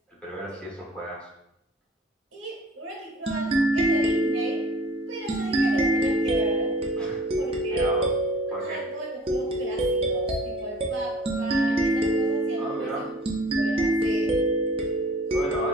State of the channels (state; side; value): normal; both; correlation 0.48